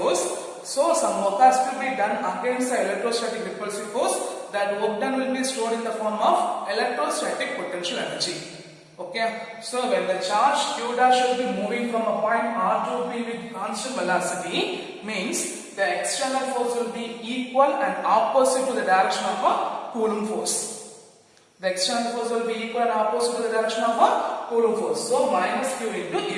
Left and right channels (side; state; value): both; identical; correlation 1.00